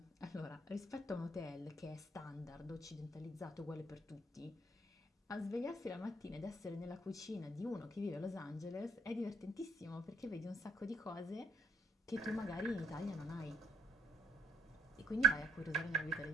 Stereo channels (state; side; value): normal; both; correlation 0.70